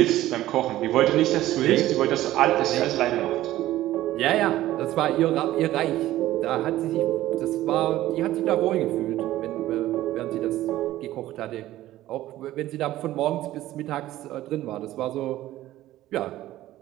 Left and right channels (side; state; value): left; quieter; 14.9 dB